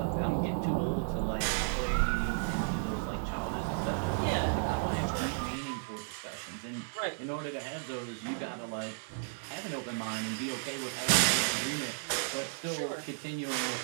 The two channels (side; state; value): left; silent; 55 dB below the other